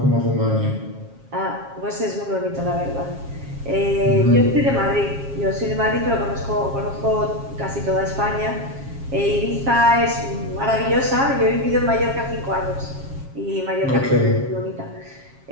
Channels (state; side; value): late; left; 7.4 ms